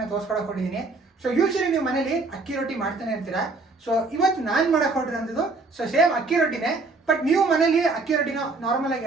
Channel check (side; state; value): left; quieter; 3.6 dB